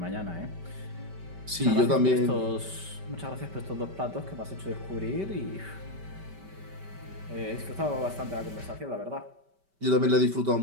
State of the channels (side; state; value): left; late; 5.2 ms